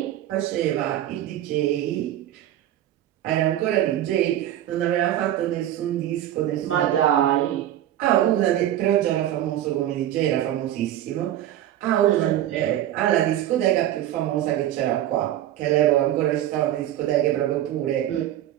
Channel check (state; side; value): quieter; left; 12.5 dB